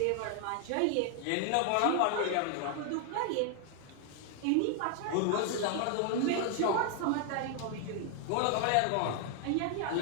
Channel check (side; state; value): both; different; correlation 0.00